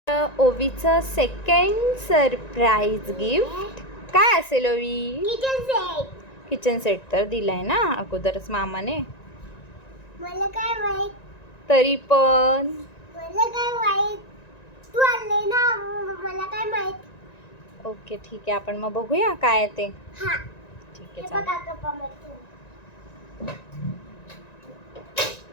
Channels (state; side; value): late; right; 1.9 ms